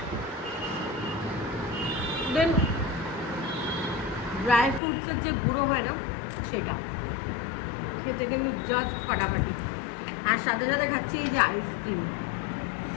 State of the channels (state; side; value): drops out; right; at 4.8 s